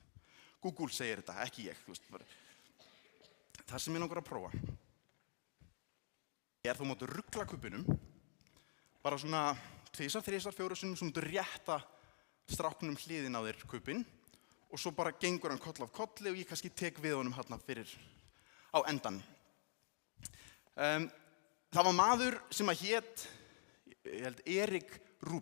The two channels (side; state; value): right; silent; digital silence